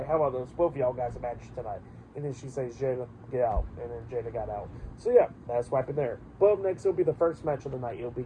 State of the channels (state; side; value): identical; both; correlation 1.00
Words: how about those both of y'all guys a match tonight? And then she says, Jada, get out. And then Jada got out. So yeah, that's what happened there. But up next, it'll be the first match of the night. It'll be